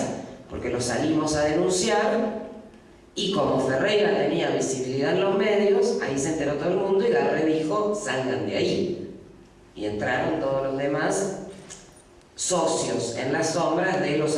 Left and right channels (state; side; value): identical; both; correlation 1.00